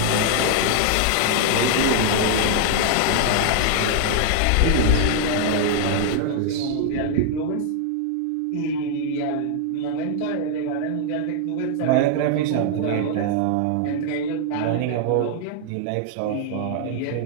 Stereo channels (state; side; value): different; both; correlation 0.00